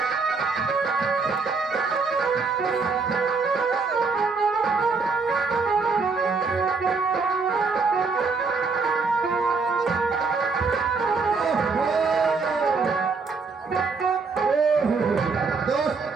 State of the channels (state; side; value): quieter; left; 4.5 dB